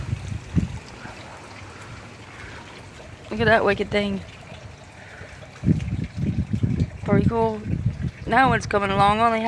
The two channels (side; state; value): both; identical; correlation 1.00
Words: Look at that wicked thing. Pretty cool. Now it's coming along. I only